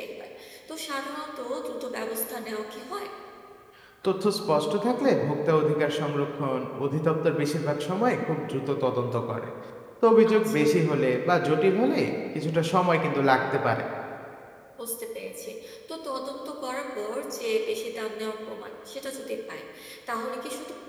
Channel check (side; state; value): both; identical; correlation 1.00